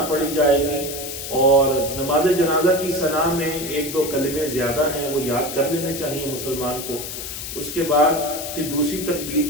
पढ़ी जाएगी और नमाज जनाजा की सना में 1-2 कलमे ज़्यादा हैं, वो याद कर लेने चाहिए मुसलमान को। उसके बाद फिर दूसरी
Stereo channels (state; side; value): noise; left; hiss, 7 dB below the sound